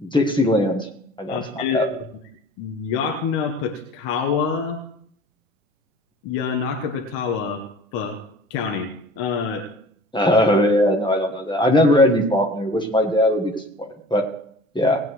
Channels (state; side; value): normal; both; correlation 0.44